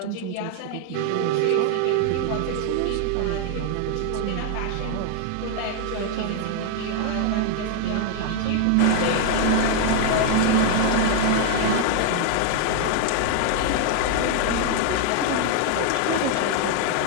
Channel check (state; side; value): different; both; correlation 0.00